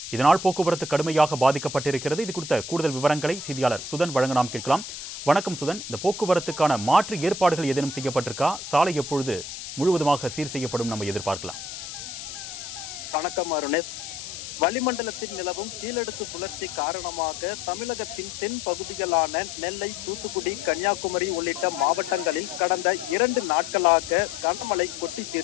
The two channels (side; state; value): left; noise; hiss, 10 dB below the sound